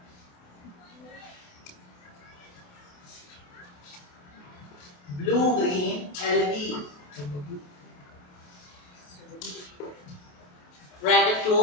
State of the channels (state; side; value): late; right; 28 ms